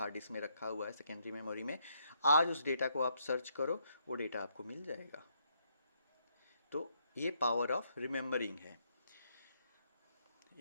डिस्क में रखा हुआ है, सेकेंडरी मेमोरी में, आज उस डेटा को आप सर्च करो, वो डेटा आपको मिल जाएगा। तो ये पावर ऑफ रिमेंबरिंग है।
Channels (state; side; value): inverted; both; correlation -0.74